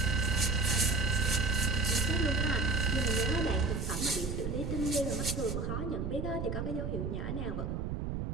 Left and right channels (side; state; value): right; noise; rumble, 3 dB below the sound